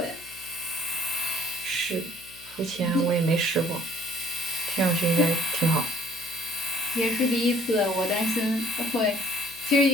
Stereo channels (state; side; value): noise; left; hum, 25 dB below the sound